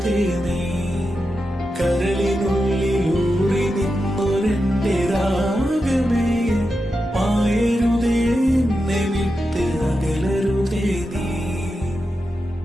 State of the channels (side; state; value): both; normal; correlation 0.89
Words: നീ. കരളിനുള്ളിലൂറി നിന്നൊരെന്റെ രാഗമേ, മായരുതേ എന്നെ വിട്ട് അകലരുതേ നീ.